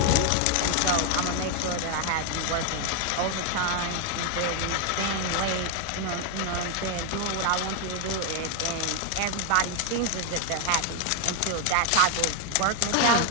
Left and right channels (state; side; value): different; both; correlation 0.01